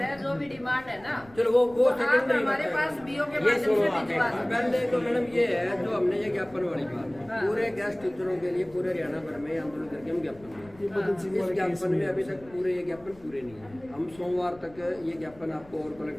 जो भी डिमांड है ना, चलो वो आप सेकंडरी हमारे पास बीओ के ये माध्यम सुनो से आप भिजवा सकते हैं। पहले तो मैडम ये है जो हमने ये ज्ञापन वाली बात हाँ। है, पूरे गेस्ट टीचरों के लिए पूरे हरियाणा भर में आंदोलन करके हम ज्ञापन दिए। इस ज्ञापन में अभी तक पूरे ये ज्ञापन पूरे नहीं है। हम सोमवार तक ये ज्ञापन आपको और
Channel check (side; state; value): left; noise; rumble, 24 dB below the sound